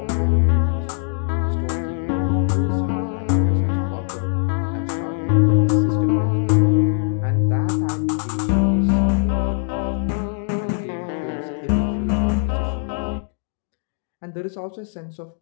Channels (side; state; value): right; silent; digital silence